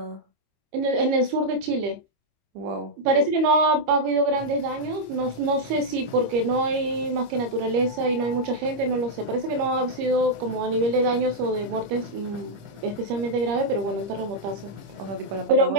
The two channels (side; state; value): left; late; 25 ms